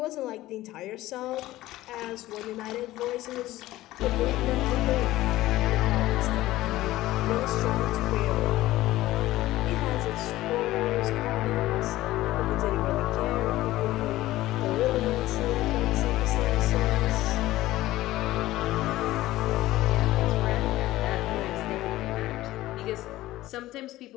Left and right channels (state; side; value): quieter; right; 16.3 dB